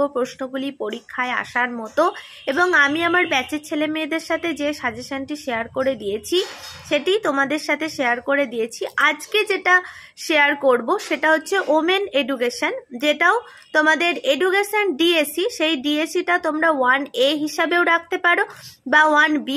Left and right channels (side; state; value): both; identical; correlation 1.00